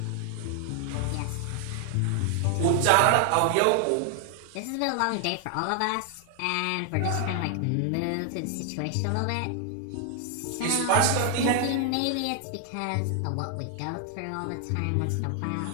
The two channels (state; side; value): different; both; correlation 0.00